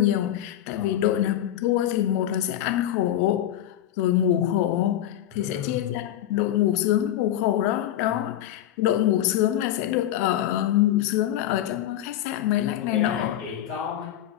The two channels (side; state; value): right; quieter; 12.1 dB